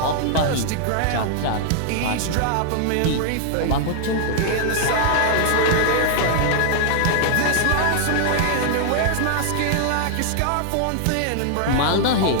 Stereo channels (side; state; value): both; different; correlation -0.01